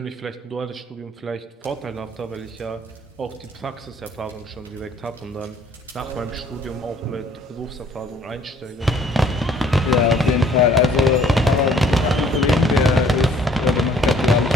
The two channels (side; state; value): both; normal; correlation 0.59